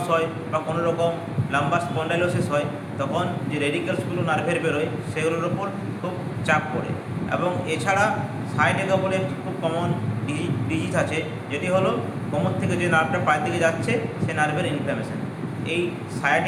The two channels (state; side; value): identical; both; correlation 1.00